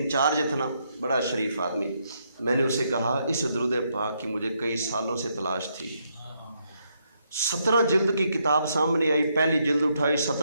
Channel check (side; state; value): both; inverted; correlation -0.76